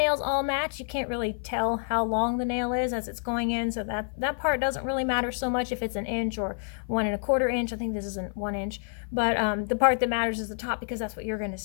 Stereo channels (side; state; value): right; silent; 57 dB below the other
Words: all match, you can't really tell how long the nail is as it's going in, so that part doesn't really matter so much if it's 1 inch or 1 1/4 inch. I think this is 1 inch, but the part that matters is the top, because that's what you're going to